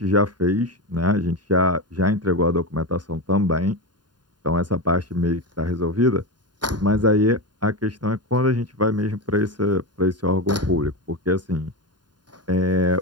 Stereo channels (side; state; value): left; late; 0.70 ms